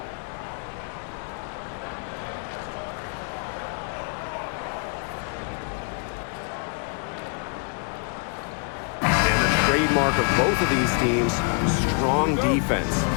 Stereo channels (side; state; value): right; quieter; 38.2 dB